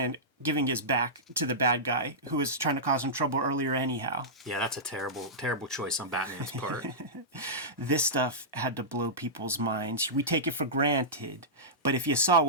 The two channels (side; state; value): both; normal; correlation -0.15